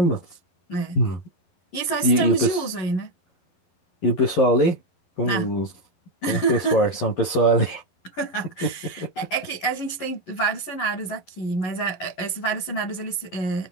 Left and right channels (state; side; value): late; right; 11 ms